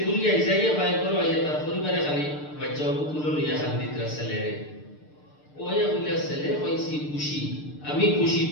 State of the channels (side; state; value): right; late; 6.7 ms